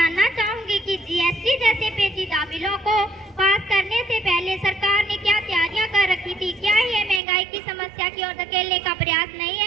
चाहूंगी कि जीएसटी जैसे पेचीदा बिलों को पास करने से पहले सरकार ने क्या तैयारियां कर रखी थी? क्या ये महंगाई की समस्या की ओर धकेलने का प्रयास नहीं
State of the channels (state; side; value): drops out; left; at 7.2 s